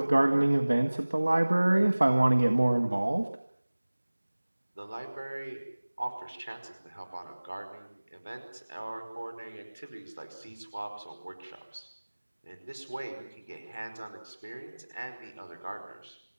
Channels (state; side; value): inverted; both; correlation -1.00